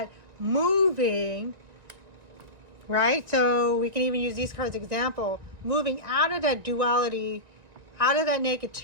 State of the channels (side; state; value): left; late; 1.9 ms